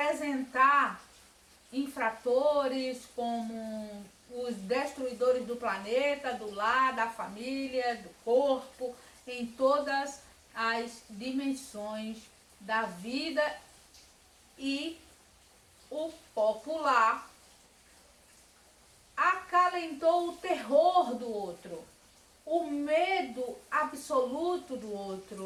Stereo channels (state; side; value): identical; both; correlation 1.00